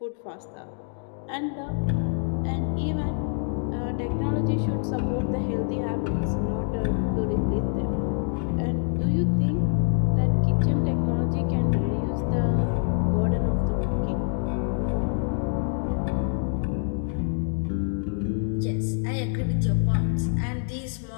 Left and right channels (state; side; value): silent; right; 56 dB below the other